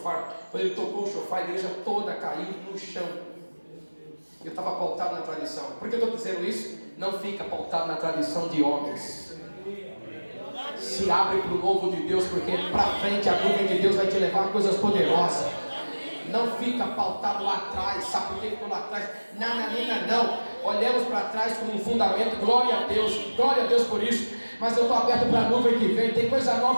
Quando ele tocou o chofar, a igreja toda caiu no chão. Eu estava pautado na tradição. Por que eu estou dizendo isso? Não fica pautado na tradição de homens. Se abre para o novo de Deus, porque para frente a nuvem de Deus vai te levar a coisas poderosas. Não fica pautado lá atrás. Sabe por que ficou lá atrás? Não. Olhamos para trás como um fundamento. Glória a Deus por isso. Mas eu estou aberto para a nuvem que vem. Tem coisa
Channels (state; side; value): inverted; both; correlation -1.00